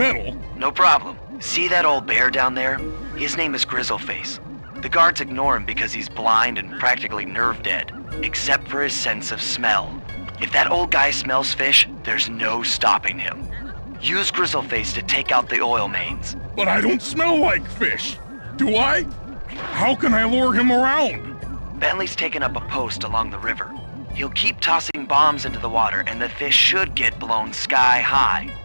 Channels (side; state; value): both; inverted; correlation -1.00